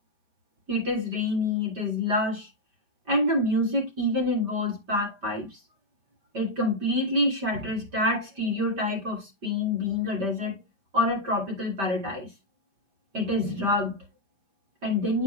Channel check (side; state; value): left; late; 5.1 ms